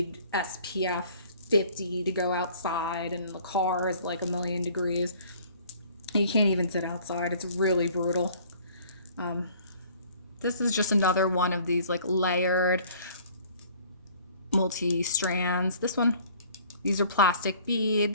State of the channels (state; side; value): inverted; both; correlation -0.53